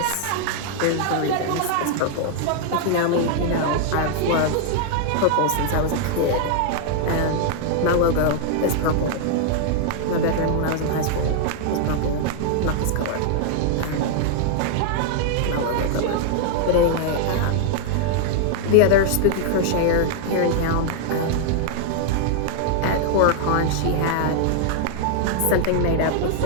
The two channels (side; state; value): both; different; correlation 0.00